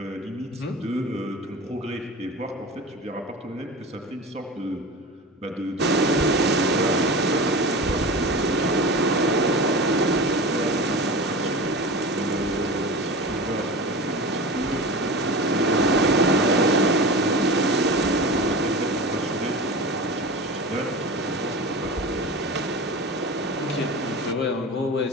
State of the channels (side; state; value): both; normal; correlation 0.31